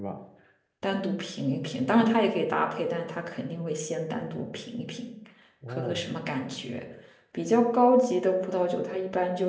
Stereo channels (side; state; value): both; identical; correlation 1.00